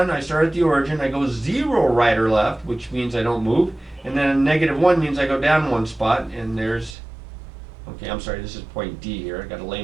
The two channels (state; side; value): drops out; left; at 7.0 s